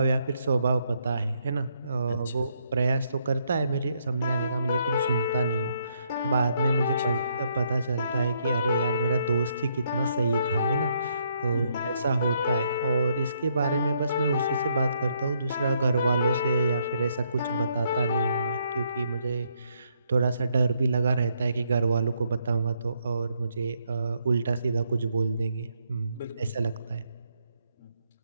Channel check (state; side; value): inverted; both; correlation -0.73